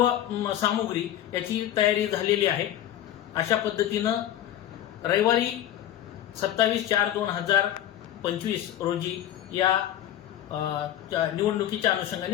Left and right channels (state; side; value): quieter; right; 11.8 dB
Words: सामुग्री याची तयारी झालेली आहे। अशा पद्धतीनं रविवारी 27/4/2025 रोजी या निवडणुकीच्या